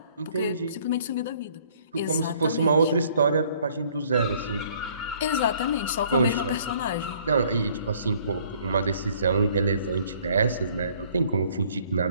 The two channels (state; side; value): inverted; both; correlation -0.59